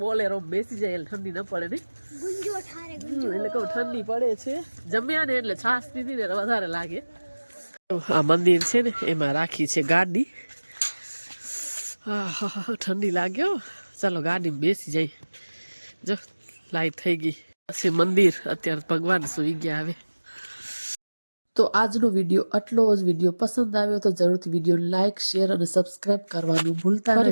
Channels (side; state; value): both; inverted; correlation -1.00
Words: બેસી જાય એટલે ઠંડી ન પડે નહીં એટલે કહું ઠંડી પડે છે જમ્યા ને એટલે છાશ પીધી ને વધારે લાગે આ મંદિર છે ને એમાં રાખી છે ગાડી ઠંડી લાગ્યો ચાલો ગાડીમાં બેસી જાય જો લાઈટ થઈ ગઈ પછી મંદિર અત્યારે ભગવાન સુઈ ગયા હવે તો આજનો વિડીયો આટલો જ વિડીયો પસંદ આવ્યો તો જરૂરથી વિડીયો લાઇક શેર અને સબસ્ક્રાઇબ કરવાનું ભૂલતા